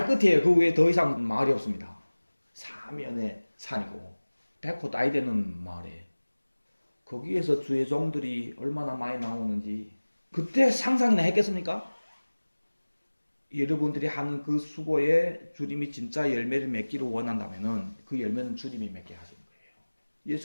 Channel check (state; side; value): inverted; both; correlation -1.00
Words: 끝이에요. 그 외에 더 이상 마을이 없습니다. 사면의 산이고 백호 따위 되는 마을에 거기에서 주의 종들이 얼마나 많이 나오는지 그때 상상이나 했겠습니까? 여러분들이 하는 그 수고에 주님이 진짜 열매를 맺기를 원한다면은 그 열매는 주님이 맺게 하시는 거예요.